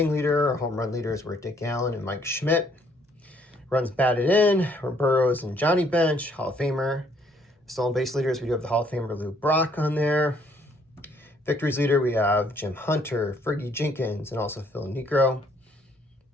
leader. Our home run leaders were Dick Allen and Mike Schmidt. Runs batted in were Burrows and Johnny Bench, Hall of Famer. Stolen base leaders, we do have the Hall of Famer Lou Brock on there. Victories leader, we have Jim Hunter, Fergie Jenkins, and also Phil Niekro.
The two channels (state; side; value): normal; both; correlation 0.65